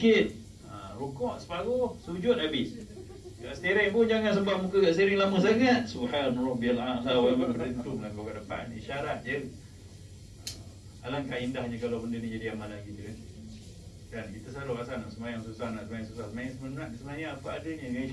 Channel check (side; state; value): both; identical; correlation 1.00